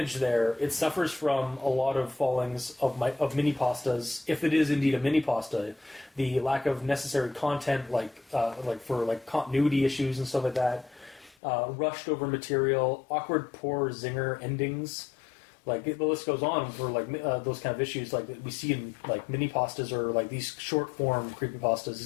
there, it suffers from a lot of fallings of mini pastas. If it is indeed a mini pasta, the lack of necessary content, like for continuity issues and stuff like that, rushed over material, awkward, poor zinger endings. Like the list goes on for like those kind of issues, like that we see in like mini pastas or like these short form creepypastas,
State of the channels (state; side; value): drops out; right; at 11.4 s